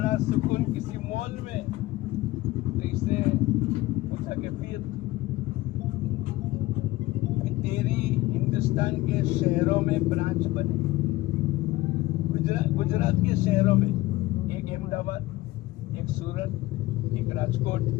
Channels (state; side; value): quieter; right; 17.8 dB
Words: सुकून किसी मॉल में। तो इसने पूछा कि फिर तेरी हिंदुस्तान के शहरों में ब्रांच बने, गुजरात के शहरों में, एक अहमदाबाद, एक सूरत, एक राजकोट,